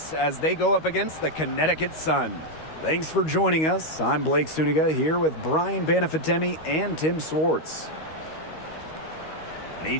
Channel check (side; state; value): right; late; 13 ms